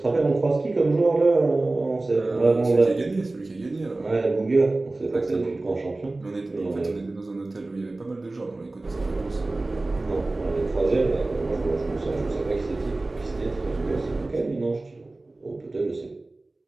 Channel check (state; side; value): quieter; left; 3.0 dB